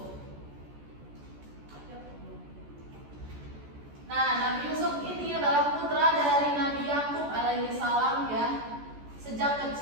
Nah, Nabi Yusuf ini adalah putra dari Nabi Yakub alaihi salam ya. Sejak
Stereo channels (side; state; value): left; late; 14 ms